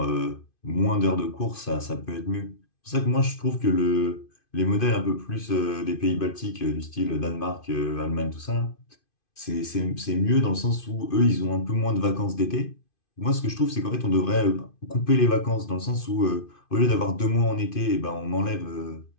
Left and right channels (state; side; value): late; right; 2.5 ms